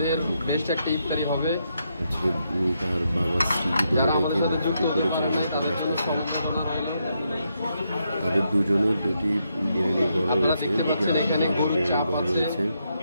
তার বাবার স্মৃতি ধরে রেখে পরিচালনা করে আসতেছেন। তাদের দুজনের দুটি বিরিয়ানিঘর রয়েছে, দুটি আলাদা বিরিয়ানিঘর রয়েছে।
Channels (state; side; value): inverted; both; correlation -0.80